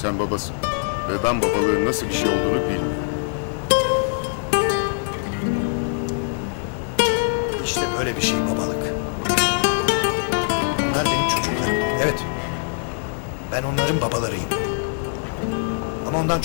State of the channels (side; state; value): right; silent; digital silence